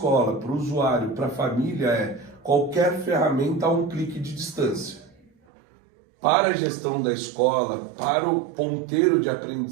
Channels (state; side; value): drops out; left; at 5.3 s